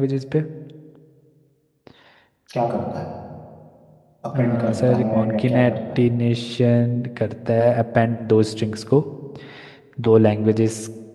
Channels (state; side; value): identical; both; correlation 1.00